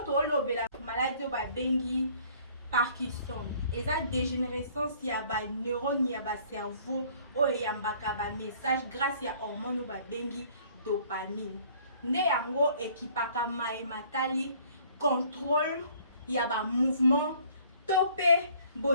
tolobela maladie ba bengi Parkinson. Eza dégénérescence ya ba neurone ya ba cerveau o yambaka ba message grâce ya hormone ba bengi dopamine. Nde yango ekipaka matali contrôle ya ba mouvement topé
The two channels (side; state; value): both; inverted; correlation -0.57